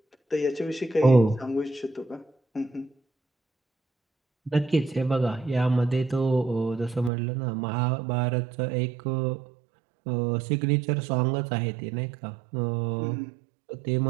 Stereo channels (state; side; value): drops out; left; at 7.1 s